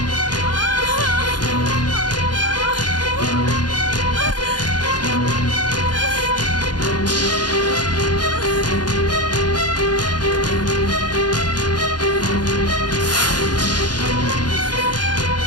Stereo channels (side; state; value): right; late; 0.70 ms